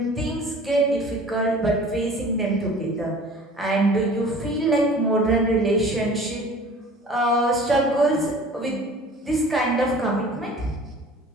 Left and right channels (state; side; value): normal; both; correlation 0.45